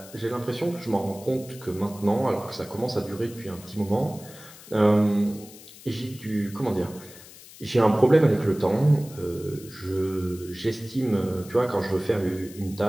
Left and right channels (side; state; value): left; noise; hiss, 19 dB below the sound